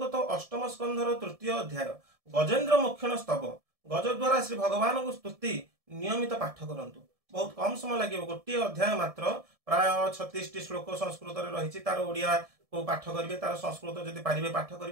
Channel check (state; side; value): late; left; 1.7 ms